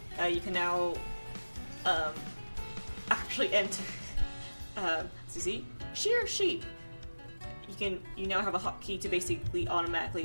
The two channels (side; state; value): both; inverted; correlation -1.00